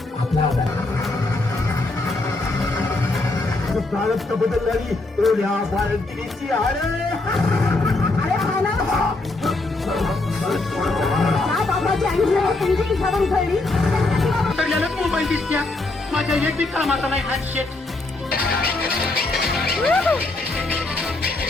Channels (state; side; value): quieter; right; 3.0 dB